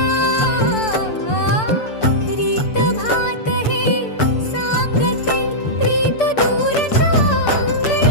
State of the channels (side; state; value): right; late; 6.8 ms